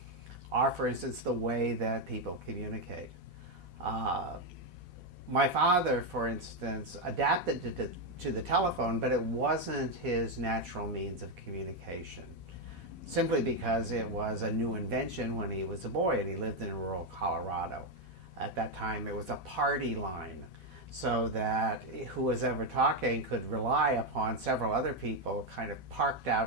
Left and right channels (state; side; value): late; left; 4.1 ms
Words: are, for instance, the way that people communicate. Uh, my father, for instance, adapted to the telephone, but it wasn't his natural means of communication, simply because it was a new invention when he was a boy and he lived in rural Colorado. At that time, it was a party line, so that who was ever talking could rely upon several other people kind of parked out